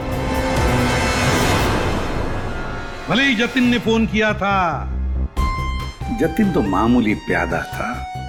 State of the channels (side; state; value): both; identical; correlation 1.00